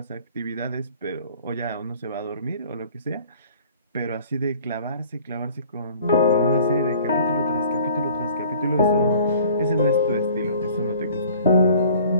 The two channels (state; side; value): inverted; both; correlation -0.51